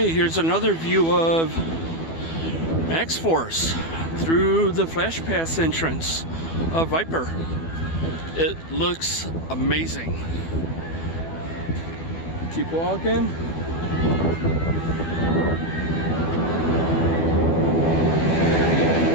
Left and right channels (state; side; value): late; right; 12 ms